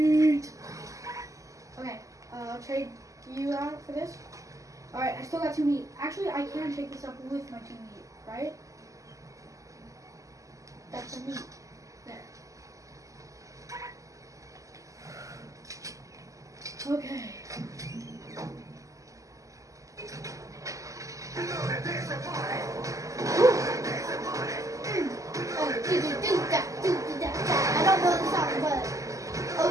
Okay, I'll trade you out for this. Alright, I still got 2 meat. Actually, I can take this up with my 2 meat, right? That's the meat. There. Okay. I don't know the song, but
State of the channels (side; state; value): left; late; 0.16 ms